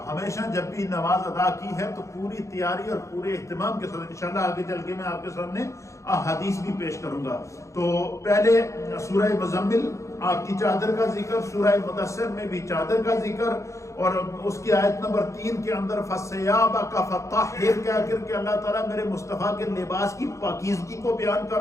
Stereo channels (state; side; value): late; right; 0.15 ms